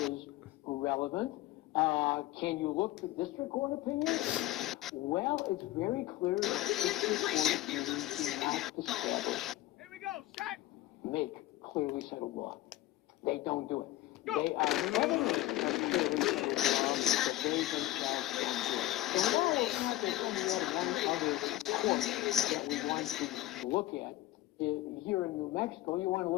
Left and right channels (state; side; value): quieter; right; 15.6 dB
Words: is relevant, can you look to district court opinions? Well, it's very clear that district court opinions do not establish, make clearly settled law. They don't do it. They are evidence of clearly settled law, but they themselves don't do it. And while it's not that only one other court that we want to look at, here in New Mexico, you want to